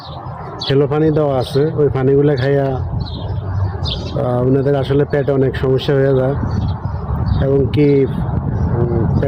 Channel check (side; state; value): both; identical; correlation 1.00